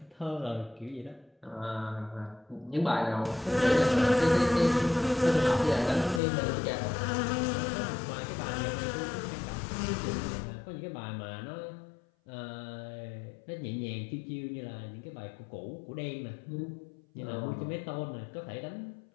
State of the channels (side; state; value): right; drops out; at 6.2 s